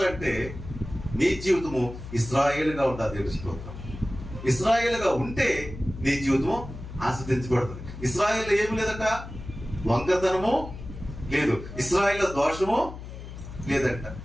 నీ జీవితము ఇశ్రాయేలుగా ఉండాలి. దేవుడి స్తోత్రం. ఇశ్రాయేలుగా ఉంటే నీ జీవితము ఆస్వాదించబడుతుంది. ఇశ్రాయేల్ ఏమి లేదట, వంకతనము లేదు, ఇశ్రాయేల్ దోషము లేదంట.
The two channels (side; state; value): left; noise; hum, 12 dB below the sound